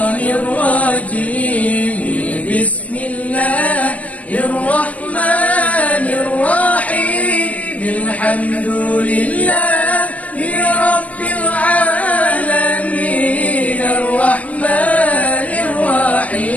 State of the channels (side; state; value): right; late; 0.074 ms